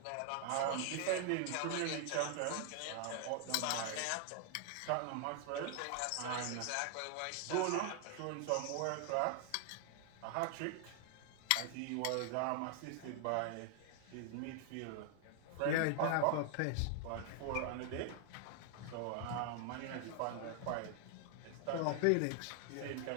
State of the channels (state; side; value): different; both; correlation 0.00